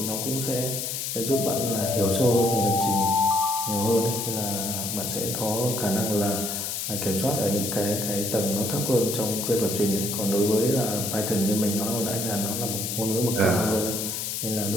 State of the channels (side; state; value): left; noise; hiss, 3 dB below the sound